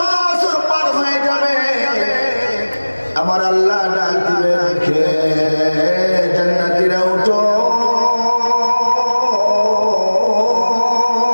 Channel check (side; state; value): both; inverted; correlation -1.00